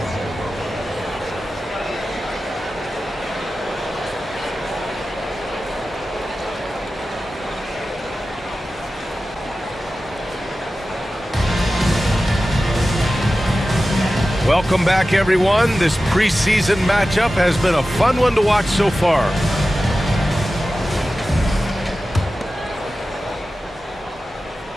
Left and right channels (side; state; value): both; normal; correlation 0.94